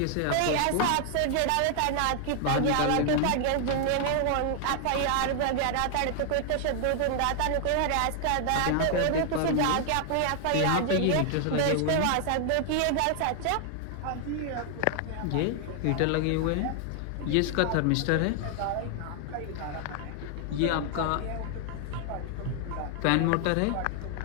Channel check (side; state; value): both; different; correlation 0.00